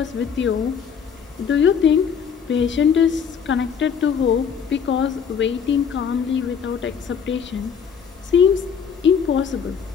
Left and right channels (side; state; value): right; quieter; 7.0 dB